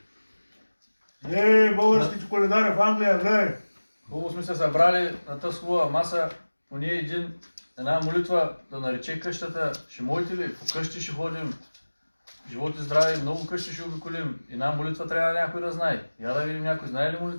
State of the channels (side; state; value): both; inverted; correlation -1.00